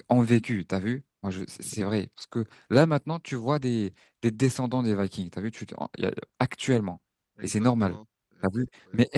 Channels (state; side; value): identical; both; correlation 1.00